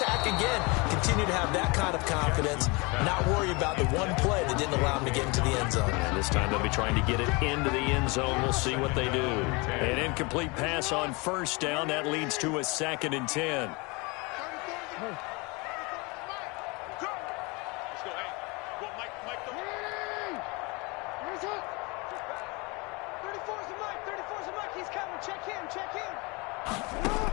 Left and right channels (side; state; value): right; quieter; 27.6 dB